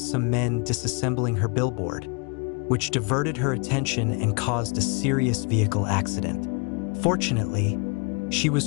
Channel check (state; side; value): quieter; right; 34.3 dB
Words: some men disassembling her billboard, which diverted her attention and caused a serious vehicle accident. Fortunately, she was